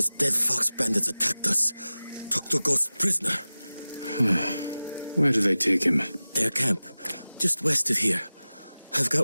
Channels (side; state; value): both; inverted; correlation -0.97